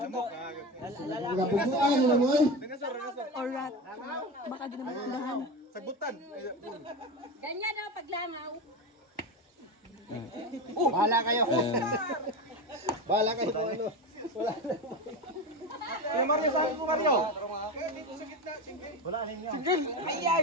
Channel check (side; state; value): both; normal; correlation 0.21